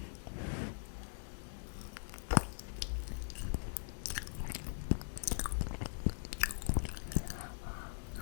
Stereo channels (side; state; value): right; silent; digital silence